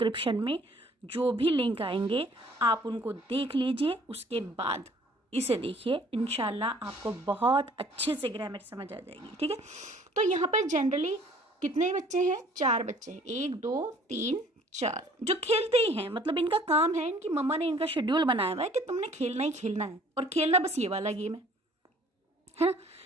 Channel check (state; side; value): normal; both; correlation 0.55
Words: में जो भी लिंक आएंगे आप उनको देख लीजिए, उसके बाद इसे देखिए, इंशाल्लाह आपको बहुत अच्छे से ग्रामर समझ आ जाएगी, ठीक है। तो यहाँ पर जनरली कितने बच्चे हैं? 4 बच्चे हैं, 1 2 3 4, जो खेलते ही हैं, मतलब इनका काम है, इनकी मम्मा ने इनका शेड्यूल बनाया हुआ है कि तुमने खेलना ही खेलना है, और खेलना बस ये वाला गेम है ना।